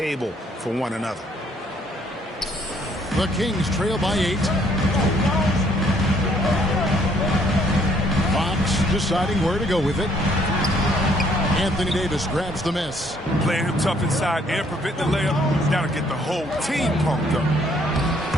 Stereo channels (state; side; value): normal; both; correlation 0.65